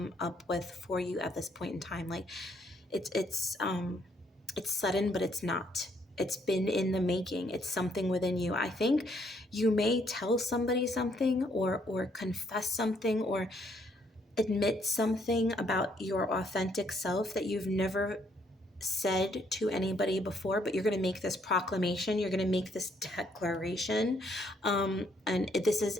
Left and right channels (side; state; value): both; normal; correlation 0.70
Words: up with for you at this point in time. Like it's sudden, but it's not. It's been in the making. It's something within you. I think you may tell somebody something or confess something or admit something about your authentic self that you've never said to anybody before, but you're going to make this proclamation, you're going to make this declaration, and this